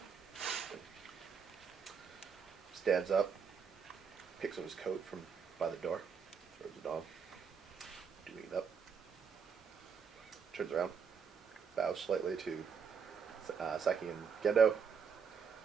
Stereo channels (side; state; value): left; quieter; 6.3 dB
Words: Stands up, picks up his coat from by the door, throws it on, doing it up. Turns around, bows slightly to Saki and Gendo.